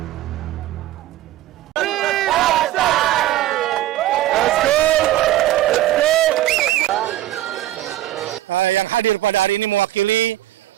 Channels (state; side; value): quieter; left; 14.5 dB